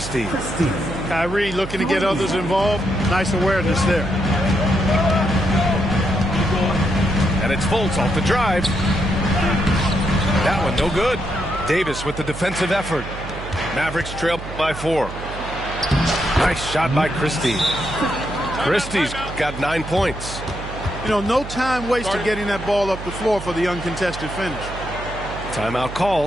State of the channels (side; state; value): right; noise; hum, 10 dB below the sound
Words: Kyrie looking to get others involved. Nice awareness there. And it's Fultz off the drive. That one no good. Davis with the defensive effort. Mavericks trail by 4. Nice shot by Christie. Christie's got 9 points. You know, no time wasted getting that ball up the floor for the uncontested finish. Timeout